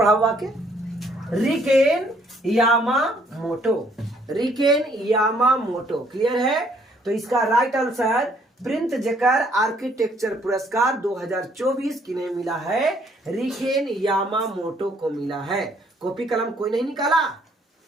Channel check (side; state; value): both; normal; correlation 0.65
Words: हुआ के RIKEN Yamamoto, RIKEN Yamamoto. Clear है? तो इसका राइट आंसर प्रिंट जकर आर्किटेक्चर पुरस्कार 2024 किन्हें मिला है? रिकेन यामामोटो को मिला है। कॉपी कलम कोई नहीं निकाला